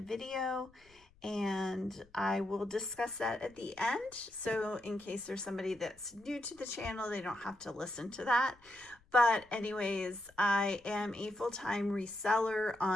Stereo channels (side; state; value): left; noise; rumble, 29 dB below the sound